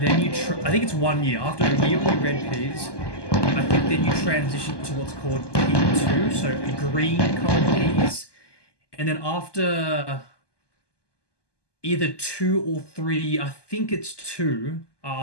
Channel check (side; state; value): right; late; 1.2 ms